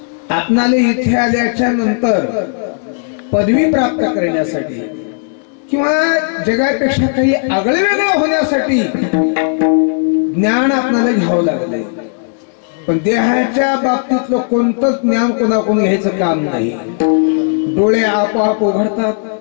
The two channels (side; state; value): right; silent; digital silence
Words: आपणाला इथे आल्याच्या नंतर पदवी प्राप्त करण्यासाठी किंवा जगापेक्षा काही आगळे वेगळं होण्यासाठी ज्ञान आपल्याला घ्यावं लागलंय. पण देहाच्या बाबतीतलं कोणतंच ज्ञान कोणाकडून घ्यायचं काम नाही. डोळे आपोआप उघडतात.